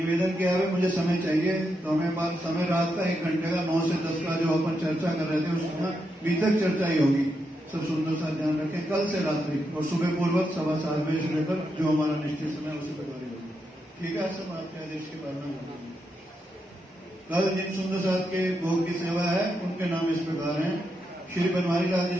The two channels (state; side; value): normal; both; correlation 0.83